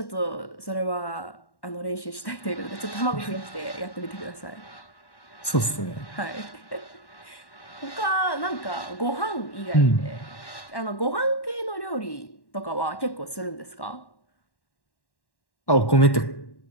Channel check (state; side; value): late; right; 1.1 ms